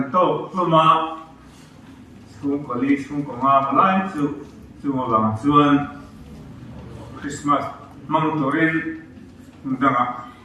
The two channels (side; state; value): both; identical; correlation 1.00